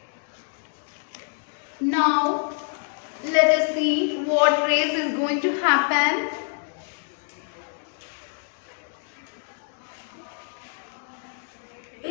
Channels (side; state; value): right; silent; 56 dB below the other